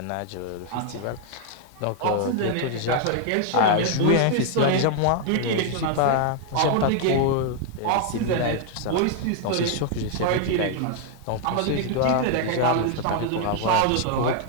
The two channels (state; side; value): different; both; correlation 0.00